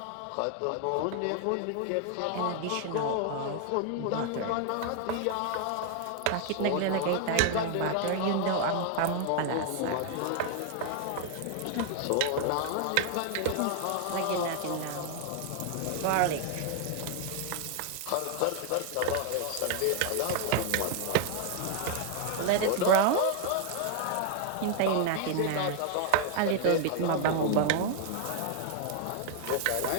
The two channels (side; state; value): both; different; correlation 0.00